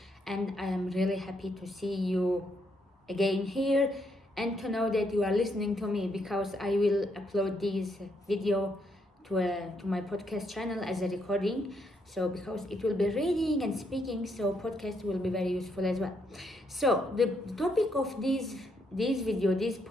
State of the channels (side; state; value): both; normal; correlation 0.75